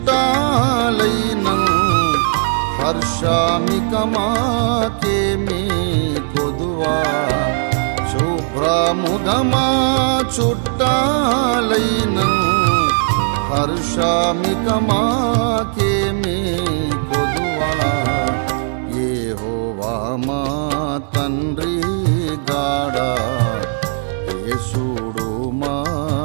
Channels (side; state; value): left; silent; digital silence